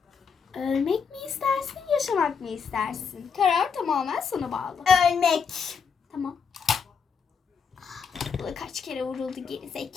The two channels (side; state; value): right; quieter; 6.1 dB